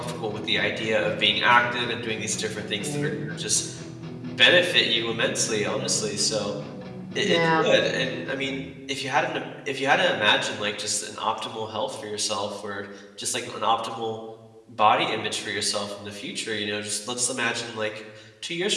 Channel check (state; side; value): identical; both; correlation 1.00